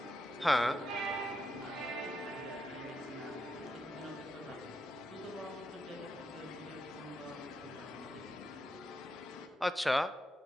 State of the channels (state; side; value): normal; both; correlation 0.83